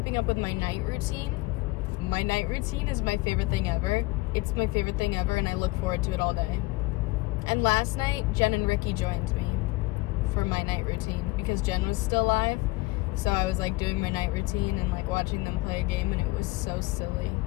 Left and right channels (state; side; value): quieter; right; 21.9 dB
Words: up with my night routine. My night routine is my favorite thing ever. It's my favorite thing ever, and I look forward to it all day. And last night, Jen and Ricky joined me for my night routine because Jen was still alive. So I was like doing my night routine and like watching them play a game, and it was so silly.